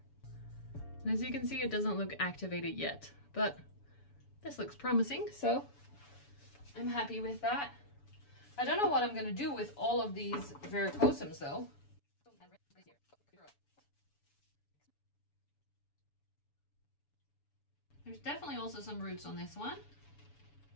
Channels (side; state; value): right; late; 7.0 ms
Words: And as you can see, it doesn't look activated yet, but this looks promising, so I'm happy with that. I don't know what I'm gonna do with all of these verrucosums though. There's definitely also some roots on this one.